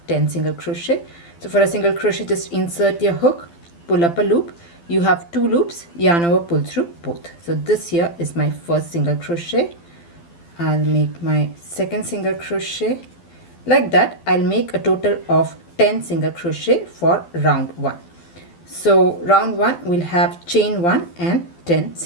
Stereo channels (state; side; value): late; right; 12 ms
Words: 10 single crochet. So for a single crochet, just insert your hook, pull up a loop, you have 2 loops, yarn over, pull through both. So this here is my first single crochet. I'll make my second single crochet. Like that, I'll make a total of 10 single crochet for round 1. So round 1 will have chain 1 and 10